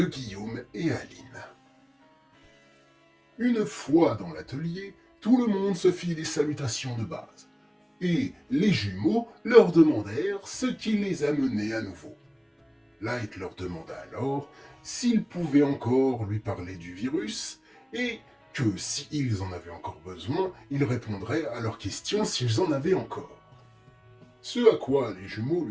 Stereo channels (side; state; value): both; identical; correlation 1.00